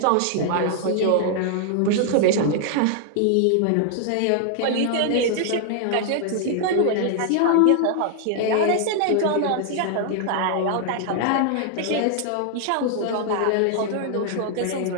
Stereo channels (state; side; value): different; both; correlation 0.00